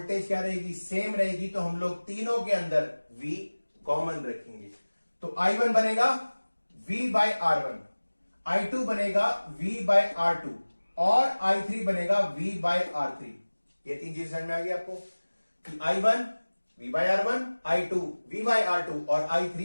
क्या रहेगी, सेम रहेगी। तो हम लोग तीनों के अंदर V कॉमन रखेंगे। तो I1 बनेगा V बाई R1, I2 बनेगा V बाई R2 और I3 बनेगा V बाय R3। ये 3 चीज समझ में आ गई आपको कि I1 V by R1, I2 V by R2 और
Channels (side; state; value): both; inverted; correlation -1.00